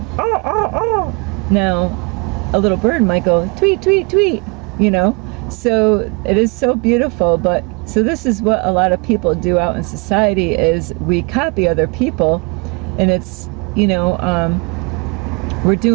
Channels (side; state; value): left; quieter; 31.3 dB